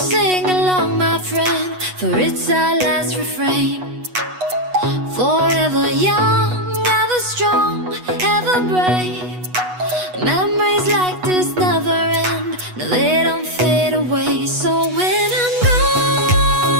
along, my friend? For it's our last refrain. Forever young, ever strong, ever brave. Memories like this never end. No, they don't fade away. So when I'm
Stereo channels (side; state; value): left; late; 8.2 ms